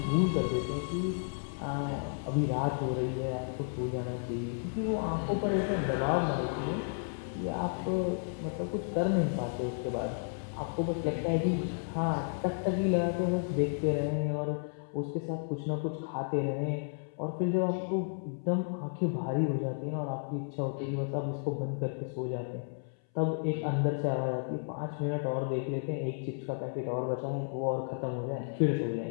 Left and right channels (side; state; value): right; silent; 56 dB below the other